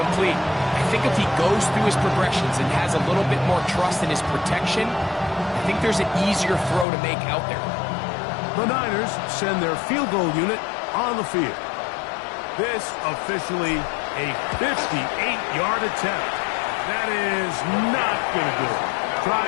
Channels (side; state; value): right; drops out; at 6.9 s